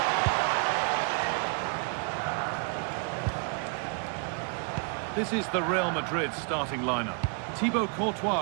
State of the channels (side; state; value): left; quieter; 38.2 dB